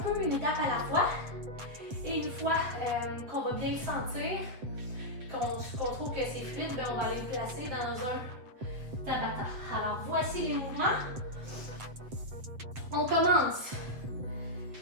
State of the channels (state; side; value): late; left; 7.8 ms